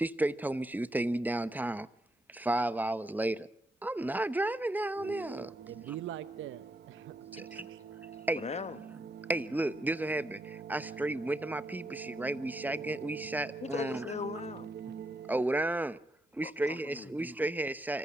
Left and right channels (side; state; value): both; normal; correlation 0.80